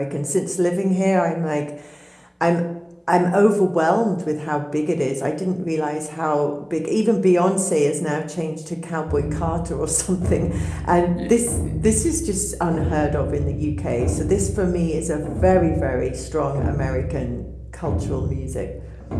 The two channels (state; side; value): identical; both; correlation 1.00